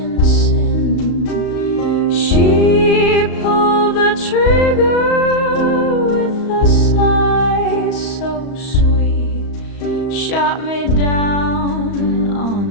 sin. She pulled the trigger with a sigh so sweet, shot me down on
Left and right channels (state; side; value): late; right; 35 ms